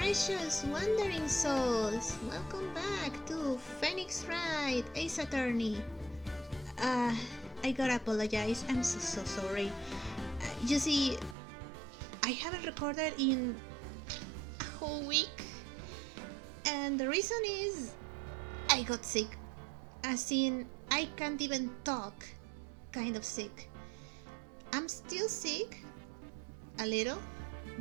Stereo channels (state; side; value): drops out; left; at 11.4 s